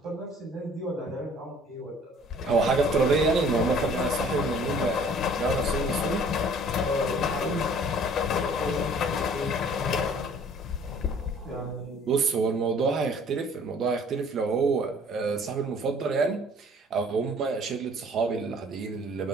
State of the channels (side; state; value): both; normal; correlation 0.54